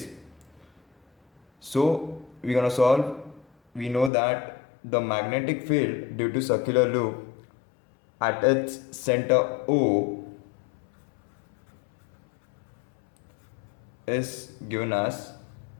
So we're gonna solve. We know that the magnetic field due to circular loop at its center O is given as,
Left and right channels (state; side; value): drops out; right; at 4.1 s